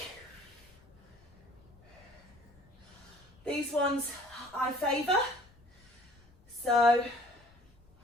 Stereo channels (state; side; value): noise; left; rumble, 27 dB below the sound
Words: These ones I favour. So